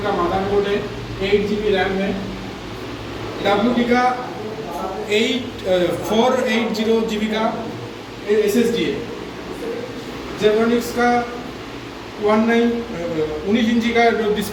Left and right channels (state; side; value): identical; both; correlation 1.00